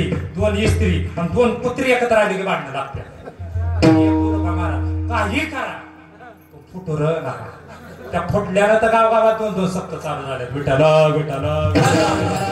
2 इस्त्री आणि 2 पुत्री एकत्र आली की भांडणं लागते. काही करा फुटूर नका. त्या फुटल्यानं तर गावागावात 2-2 सप्त चालू झाले. विठाला विठाला.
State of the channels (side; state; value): both; identical; correlation 1.00